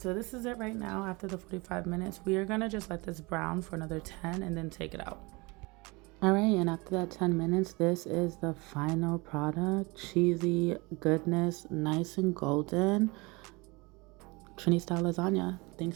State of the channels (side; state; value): left; quieter; 25.8 dB